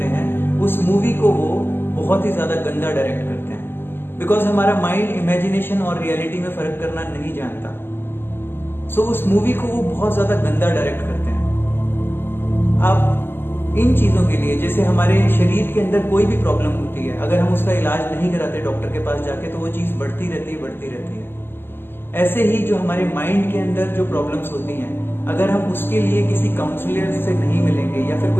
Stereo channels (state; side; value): late; right; 0.10 ms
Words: हैं, उस मूवी को वो बहुत ही ज्यादा गंदा डायरेक्ट करते हैं, बिकॉज हमारा माइंड इमेजिनेशन और रियलिटी में फर्क करना नहीं जानता। सो उस मूवी को वो बहुत ज्यादा गंदा डायरेक्ट करते हैं। आप इन चीजों के लिए, जैसे हमारे शरीर के अंदर कोई भी प्रॉब्लम होती है, अगर हम उसका इलाज नहीं कराते डॉक्टर के पास जाके, तो वो चीज बढ़ती रहती है। ऐसे ही जो हमारे माइंड के अंदर जो प्रॉब्लम्स होती हैं, अगर हम उसके लिए किसी काउंसलर से नहीं मिलेंगे या फिर